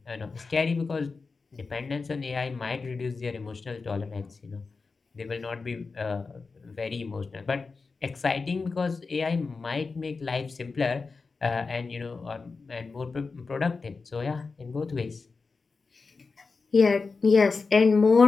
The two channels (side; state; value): right; quieter; 4.4 dB